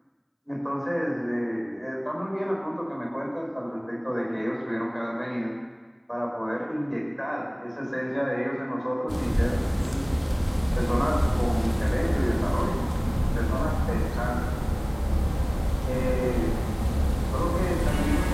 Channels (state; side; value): identical; both; correlation 1.00